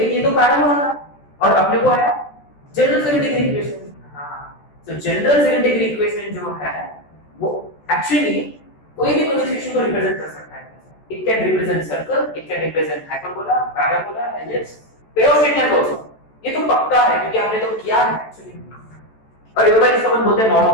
ये तो पैराबोला था और अपने को आया जनरल सेकंड डिग्री इक्वेशन। हां तो जनरल सेकंड डिग्री इक्वेशन जो है वो एक्चुअली कोई भी कंस्ट्रक्शन को रिप्रेजेंट कर सकता है। It can represent circle, it can represent hyperbola, parabola, ellipse, pair of seconds also. ये तो पक्का है क्योंकि हमने तो किया है एक्चुअली। और एक बार इसको अपन बोलते हैं नॉन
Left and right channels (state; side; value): late; right; 14 ms